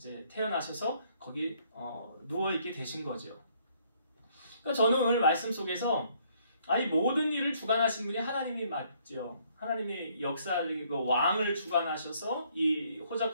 태어나셔서 거기 누워있게 되신 거죠. 그러니까 저는 오늘 말씀 속에서 아니 모든 일을 주관하신 분이 하나님이 맞죠. 하나님이 역사적이고 왕을 주관하셔서 이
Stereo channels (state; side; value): inverted; both; correlation -0.66